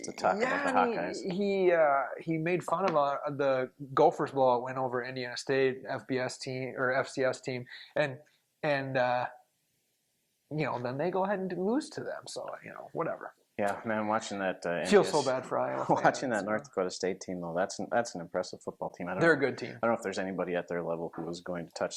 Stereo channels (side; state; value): both; identical; correlation 1.00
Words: to talk about the Hawkeyes. He made fun of the Gophers blowout win over Indiana State FBS team or FCS team, and then they go ahead and lose to them. So whatever. Yeah, man, watching that. Feels so bad for Iowa. Watching that North Dakota State team, though, that's an impressive football team. They're a good team. I don't know if there's anybody at their level who was going to touch